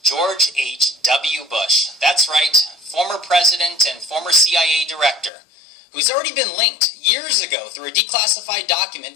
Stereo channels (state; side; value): drops out; right; at 5.3 s